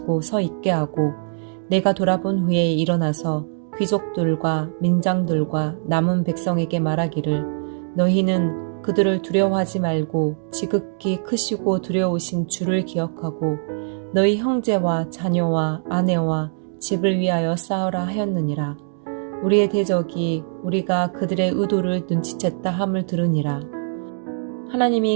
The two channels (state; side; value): silent; left; digital silence